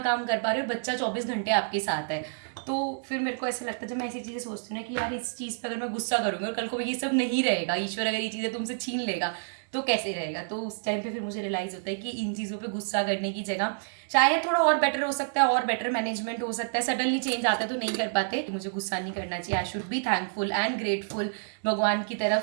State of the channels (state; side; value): silent; left; digital silence